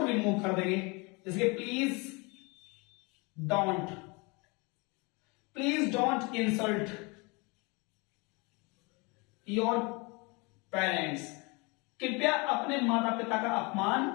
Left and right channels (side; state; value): right; quieter; 28.4 dB